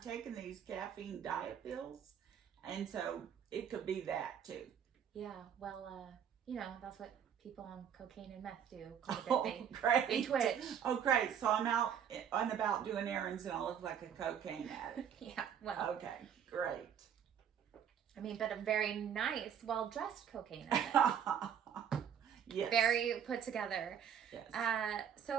these caffeine diet pills, and so it could be that too. Yeah, well, that's what people on cocaine and meth do. Quite a bit. Oh, great. They twitch. Oh, great. So I'm out and about doing errands, and I look like a cocaine addict. Yeah, well. Okay, great. I mean, but a very nice, well-dressed cocaine addict. Yes. Very put together. Yes.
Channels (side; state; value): left; quieter; 8.5 dB